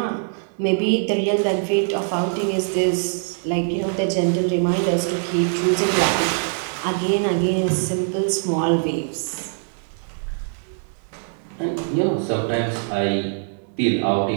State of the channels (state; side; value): silent; left; 64 dB below the other